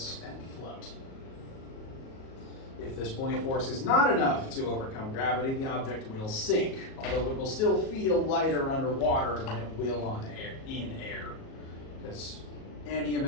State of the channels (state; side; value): late; right; 37 ms